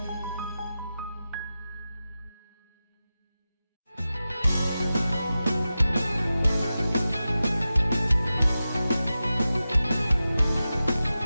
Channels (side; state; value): both; inverted; correlation -0.93